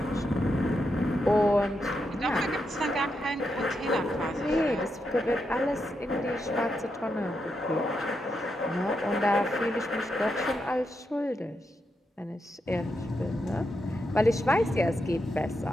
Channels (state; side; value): normal; both; correlation 0.84